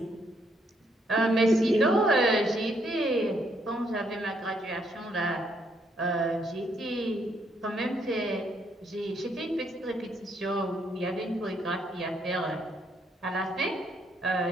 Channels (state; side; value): normal; both; correlation 0.73